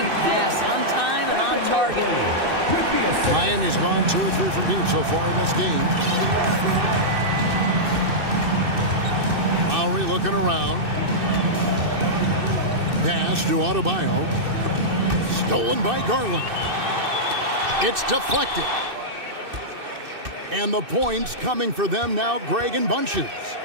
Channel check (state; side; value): late; left; 2.6 ms